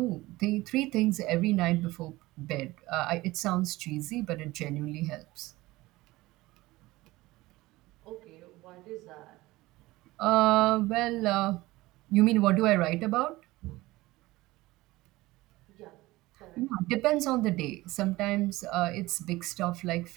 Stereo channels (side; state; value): left; quieter; 19.2 dB